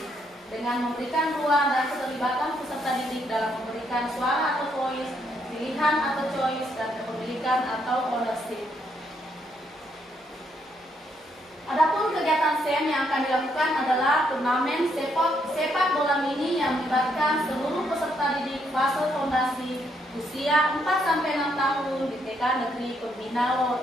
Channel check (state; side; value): normal; both; correlation 0.74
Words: dengan memberikan ruang dan keterlibatan peserta didik dalam memberikan suara atau voice, pilihan atau choice, dan kepemilikan atau ownership. Adapun kegiatan SEM yang akan dilakukan adalah turnamen sepak bola mini yang melibatkan seluruh peserta didik fase fondasi usia 4-6 tahun di TK Negeri Pembina